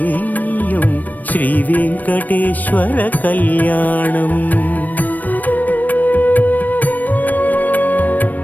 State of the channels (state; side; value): late; right; 0.083 ms